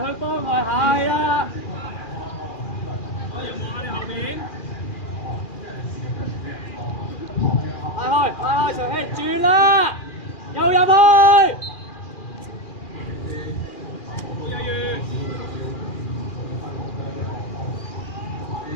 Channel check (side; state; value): right; late; 2.4 ms